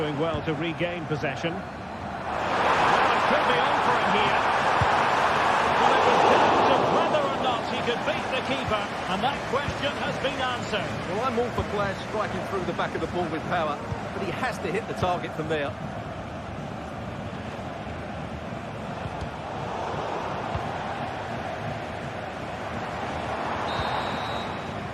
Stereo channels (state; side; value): identical; both; correlation 1.00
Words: well to regain possession. Well, it could be on for him here. Well, it was down to whether or not he could beat the keeper, and that question has been answered. Well, I'm all for players striking through the back of the ball with power, but he has to hit the target from there.